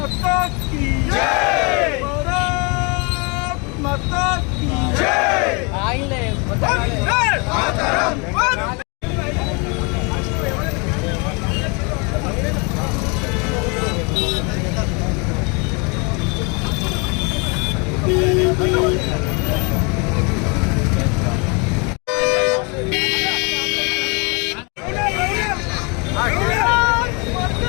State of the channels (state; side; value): quieter; right; 31.9 dB